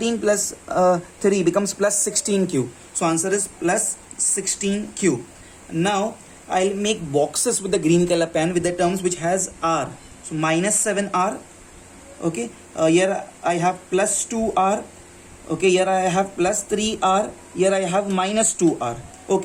plus 3 becomes plus 16q. So answer is plus 16q. Now I'll make boxes with the green color pen with the terms which has r. So minus 7r. Okay, here I have plus 2r. Okay, here I have plus 3r. Here I have minus 2r.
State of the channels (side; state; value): both; identical; correlation 1.00